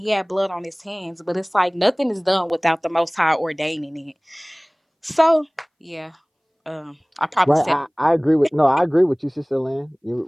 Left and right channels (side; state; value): both; identical; correlation 1.00